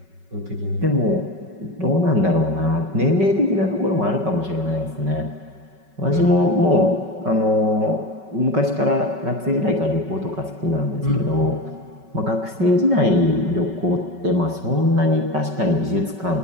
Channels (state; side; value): late; left; 5.3 ms